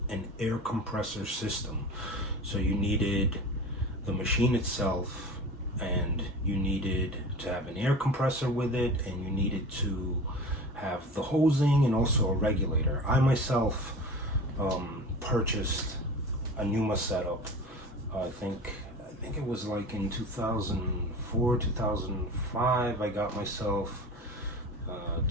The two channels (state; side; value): normal; both; correlation 0.35